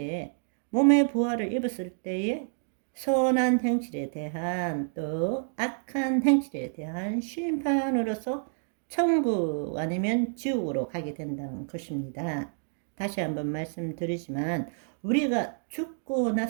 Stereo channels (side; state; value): left; silent; digital silence